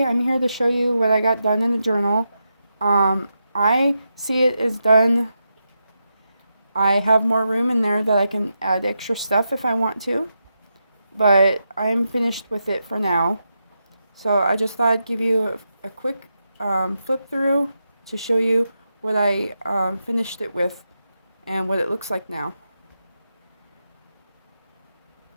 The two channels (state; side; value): inverted; both; correlation -0.86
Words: I'm here to show you what I got done in the journal. I see it is done. I have more room in there that I can add extra stuff if I want to, but I'm finished with it for now. So I just thought I'd give you a quick flip through to show you what I finished it with and what it looks like now.